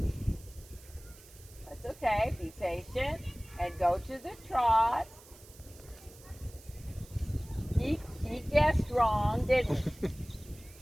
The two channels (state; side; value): noise; right; hiss, 22 dB below the sound